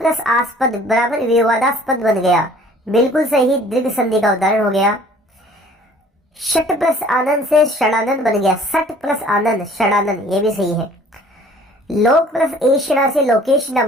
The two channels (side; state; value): both; normal; correlation 0.52